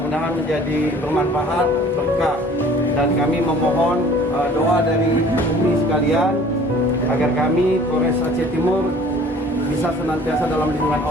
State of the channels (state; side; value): normal; both; correlation 0.50